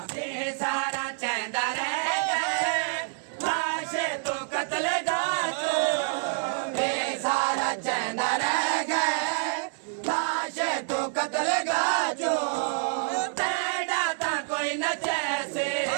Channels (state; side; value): silent; left; digital silence